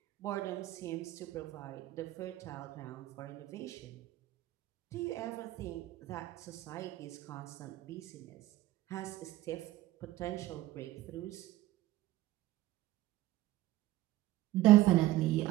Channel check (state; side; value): quieter; left; 16.0 dB